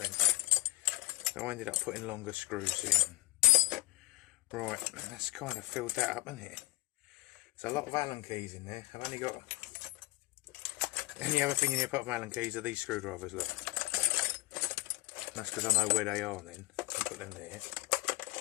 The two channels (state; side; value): quieter; right; 21.3 dB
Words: so I ended up putting longer screws in. Right, that's kind of filled that up, isn't it? There's a lot of Allen keys in there. I've only got any other thing in here apart from Allen keys are these screwdrivers, look. That's because I know where they are then. I'll put them there.